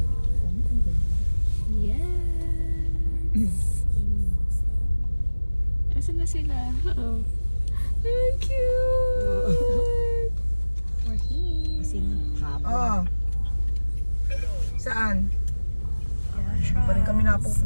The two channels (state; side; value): inverted; both; correlation -1.00